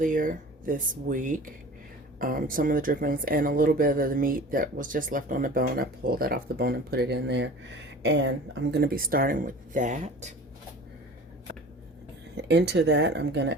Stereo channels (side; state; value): both; normal; correlation 0.40